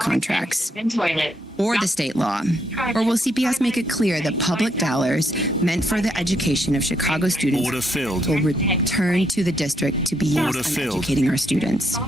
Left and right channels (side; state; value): both; normal; correlation 0.75